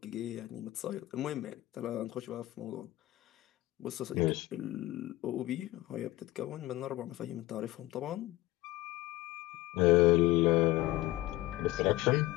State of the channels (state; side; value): quieter; right; 17.4 dB